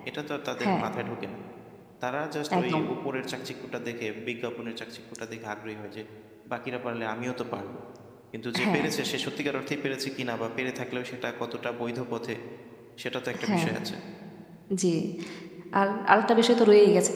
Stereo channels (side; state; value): both; identical; correlation 1.00